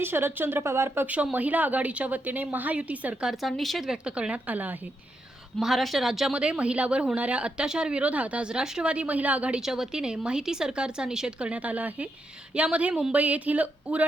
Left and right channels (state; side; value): normal; both; correlation 0.82